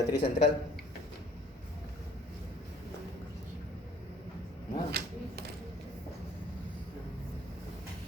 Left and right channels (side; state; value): both; normal; correlation 0.56